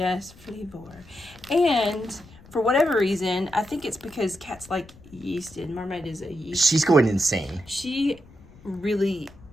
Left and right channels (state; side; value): noise; left; rumble, 23 dB below the sound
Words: flavor. And for whatever reason, I think it's because cats like yeast, and Marmite is a yeast. She's going insane. She really